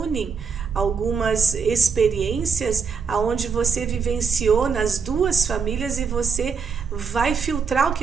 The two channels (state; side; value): quieter; left; 5.6 dB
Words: algumas experiências aonde você vivenciou nas duas famílias e você vai filtrar o que